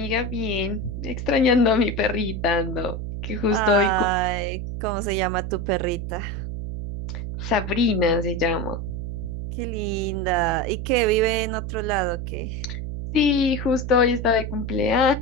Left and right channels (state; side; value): noise; right; hum, 5 dB below the sound